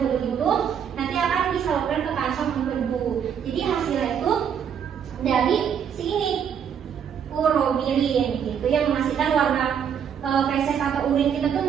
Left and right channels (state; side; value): quieter; left; 8.0 dB